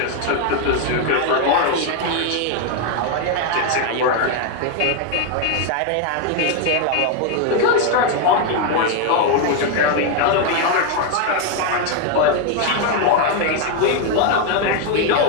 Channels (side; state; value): both; different; correlation 0.01